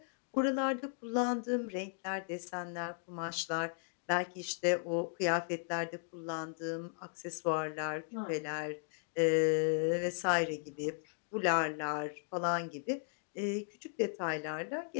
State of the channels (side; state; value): right; silent; digital silence